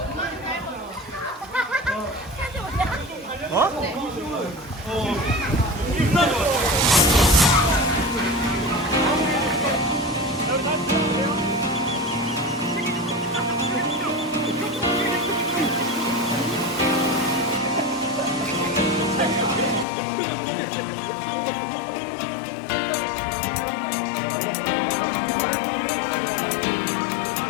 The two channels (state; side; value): drops out; right; at 19.9 s